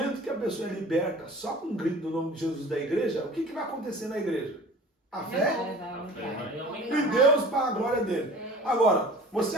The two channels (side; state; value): both; normal; correlation 0.43